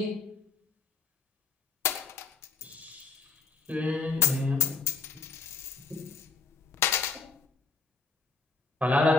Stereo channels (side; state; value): right; quieter; 4.5 dB